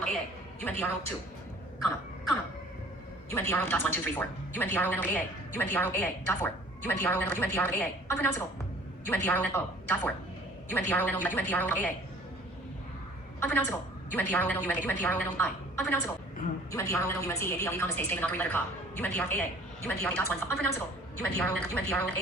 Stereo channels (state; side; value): normal; both; correlation 0.51